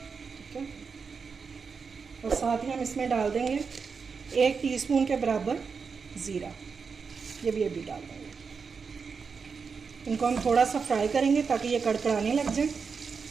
ठीक है, और साथ ही हम इसमें डाल देंगे 1 टीस्पून के बराबर ज़ीरा, ये भी डाल देंगे। इनको हम थोड़ा सा फ्राई करेंगे ताकि ये कड़कड़ाने लग जाए।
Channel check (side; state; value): left; quieter; 5.4 dB